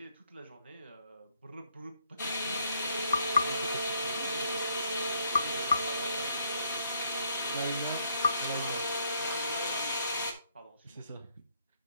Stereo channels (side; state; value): both; inverted; correlation -0.71